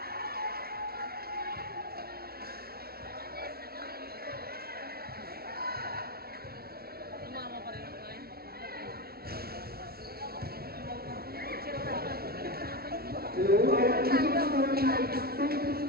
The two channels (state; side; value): late; left; 0.44 ms